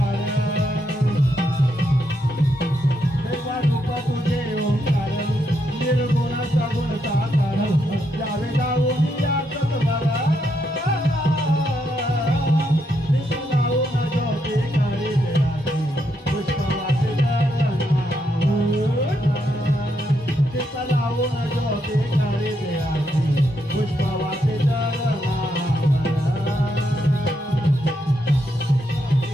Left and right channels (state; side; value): normal; both; correlation 0.79